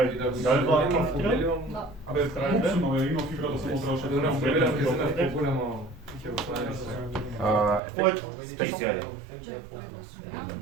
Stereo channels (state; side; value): drops out; left; at 7.8 s